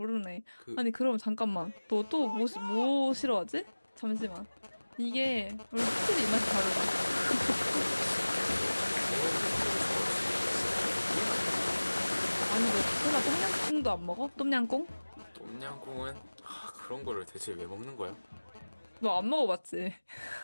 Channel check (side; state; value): both; inverted; correlation -1.00